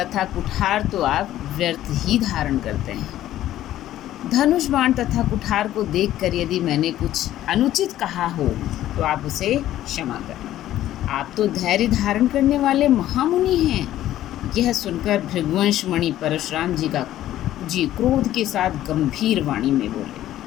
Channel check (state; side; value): quieter; right; 13.3 dB